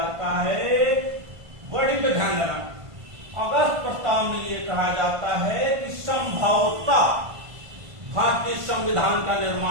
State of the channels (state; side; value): late; left; 1.5 ms